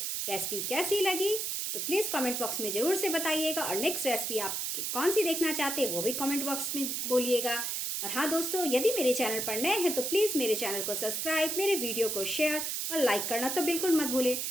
रेसिपी कैसी लगी तो प्लीज़ कमेंट बॉक्स में ज़रूर से बताइएगा। और नेक्स्ट रेसिपी आप कौन सी देखना चाहते हैं वो भी कमेंट बॉक्स में बोलिएगा। और हाँ दोस्तों, यदि मेरे चैनल पर नए हैं तो प्लीज़ मेरे चैनल को सब्सक्राइब, मेरे वीडियो को शेयर और लाइक करना तो बिल्कुल मत भूलें।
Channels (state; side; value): noise; right; hiss, 1 dB below the sound